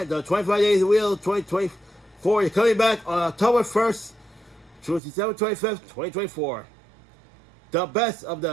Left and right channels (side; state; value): left; drops out; at 5.0 s